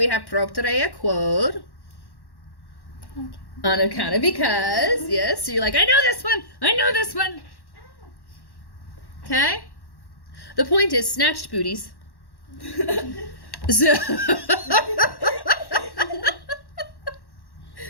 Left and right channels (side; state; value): right; late; 1.1 ms